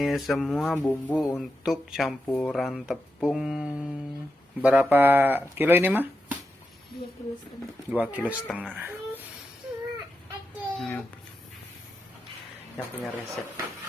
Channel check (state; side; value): normal; both; correlation 0.88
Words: semua bumbu untuk campuran tepung. Berapa kilo ini mah? 2,5 kilo. Yang punya resep.